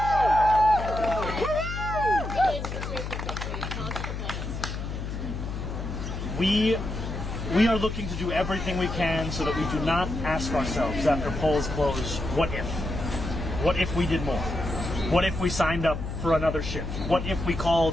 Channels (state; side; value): noise; left; hum, 5 dB below the sound